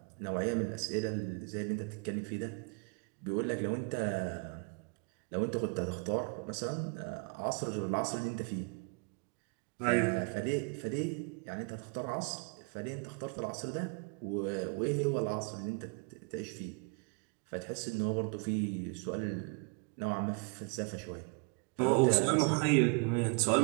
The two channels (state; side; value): quieter; left; 32.4 dB